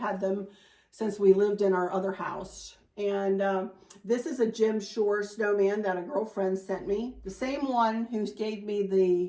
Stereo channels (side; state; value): both; identical; correlation 1.00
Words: them since we lived in our other house. And this is a Jim Shore snowman that a girlfriend sent me. The same one who gave me